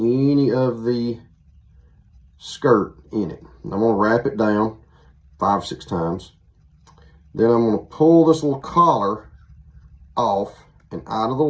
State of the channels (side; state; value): both; identical; correlation 1.00